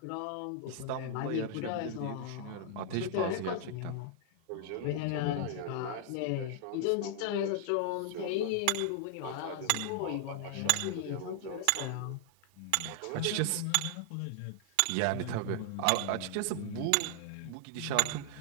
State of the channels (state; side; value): different; both; correlation 0.00